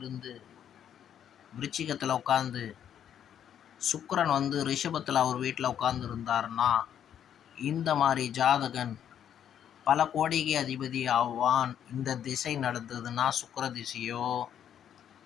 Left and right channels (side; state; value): right; quieter; 9.5 dB